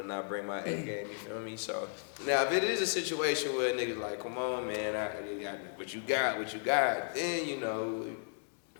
not bring my A game. You feel me? So now if it is a situation where niggas like, come on, man, what you got, then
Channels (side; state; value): right; silent; 55 dB below the other